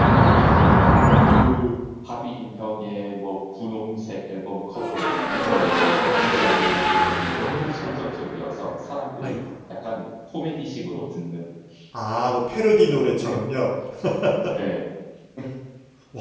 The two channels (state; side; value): identical; both; correlation 1.00